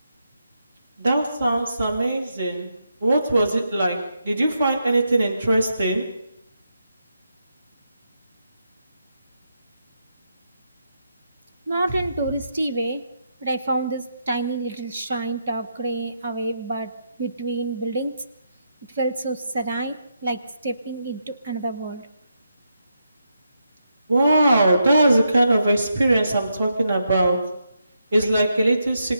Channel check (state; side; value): inverted; both; correlation -0.82